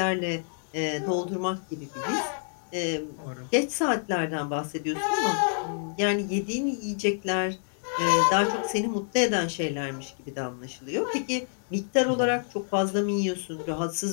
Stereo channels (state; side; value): silent; right; digital silence